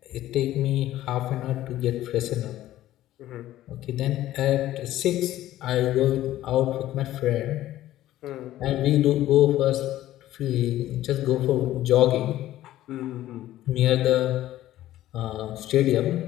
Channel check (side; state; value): right; quieter; 14.2 dB